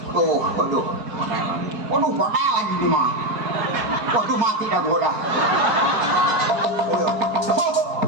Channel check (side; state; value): left; late; 4.3 ms